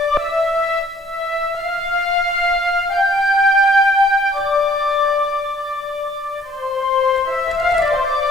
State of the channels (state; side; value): normal; both; correlation 0.59